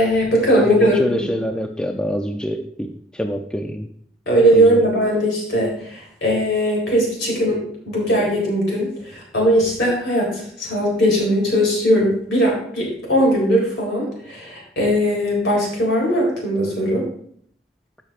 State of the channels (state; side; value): normal; both; correlation 0.49